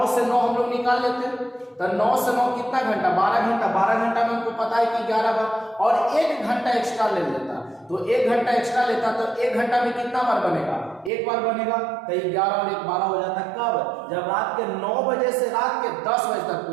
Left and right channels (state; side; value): drops out; left; at 11.1 s